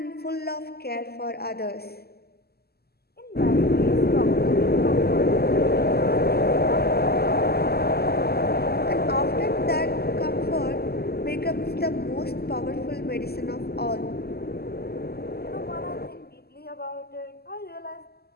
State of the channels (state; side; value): late; right; 0.46 ms